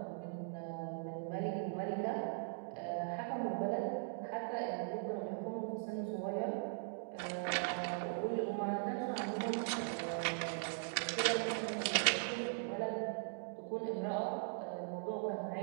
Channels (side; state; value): left; silent; digital silence